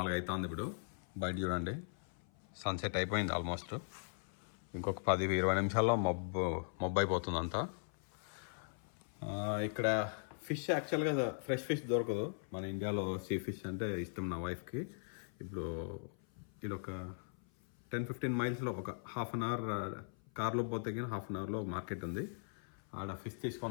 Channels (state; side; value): silent; right; 52 dB below the other